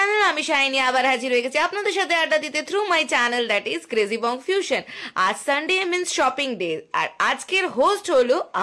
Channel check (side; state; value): both; identical; correlation 1.00